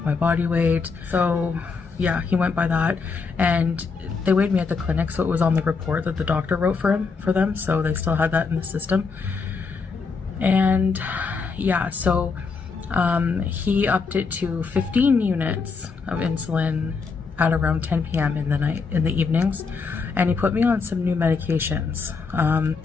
my body weight. So yeah, he went by that, and they weighed me at the clinic, so it was on the report that the doctor wrote for them. So they still had that in the system. And yeah, so he upped it to 15 units of insulin at around 10 p.m. in the evenings, and he put me on some new medications.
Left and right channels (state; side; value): quieter; right; 4.9 dB